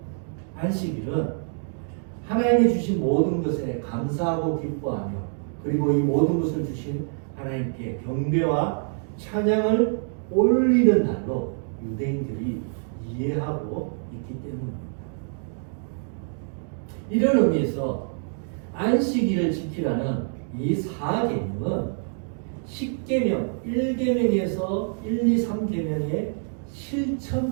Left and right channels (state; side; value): silent; left; 61 dB below the other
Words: 안식일은 하나님이 주신 모든 것에 감사하고 기뻐하며 그리고 이 모든 것을 주신 하나님께 경배와 찬양을 올리는 날로 유대인들이 이해하고 있기 때문입니다. 이런 의미에서 안식일을 지키라는 이 4계명은 10계명, 1계명에서 1, 2, 3계명의